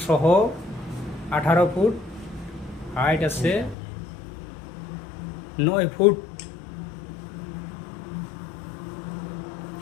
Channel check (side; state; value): right; drops out; at 3.8 s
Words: সহ 18 ফুট, হাইট আছে 9 ফুট।